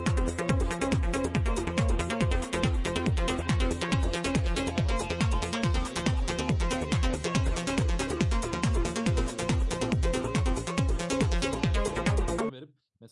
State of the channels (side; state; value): both; identical; correlation 1.00